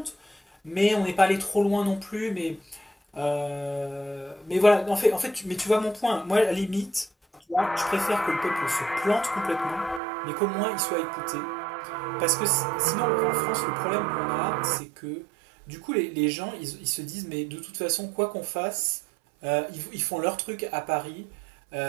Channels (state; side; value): drops out; left; at 10.0 s